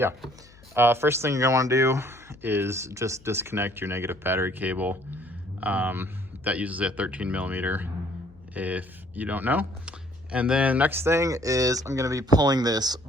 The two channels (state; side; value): noise; left; hum, 25 dB below the sound